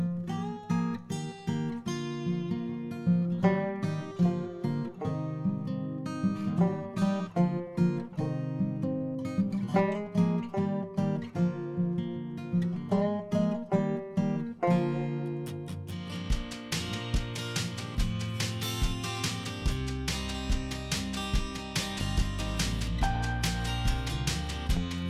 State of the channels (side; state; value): both; identical; correlation 1.00